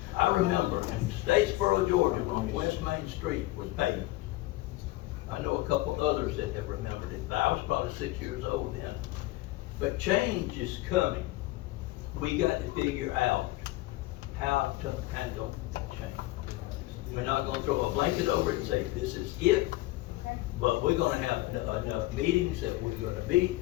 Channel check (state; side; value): quieter; right; 18.9 dB